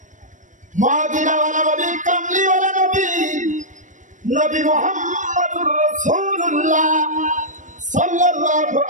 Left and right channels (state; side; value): late; left; 0.37 ms